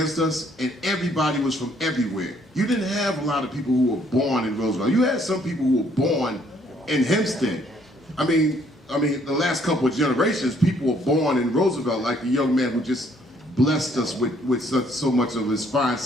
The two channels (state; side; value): normal; both; correlation 0.65